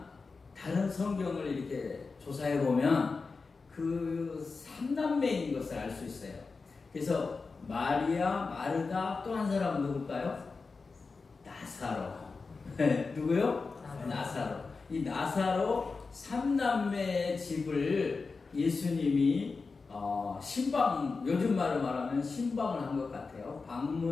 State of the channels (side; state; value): right; quieter; 4.3 dB